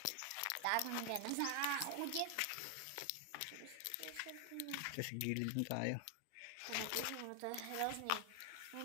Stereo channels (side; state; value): both; different; correlation 0.00